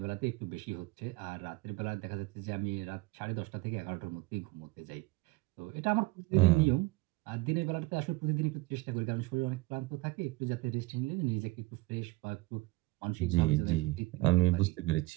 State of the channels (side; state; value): left; quieter; 21.9 dB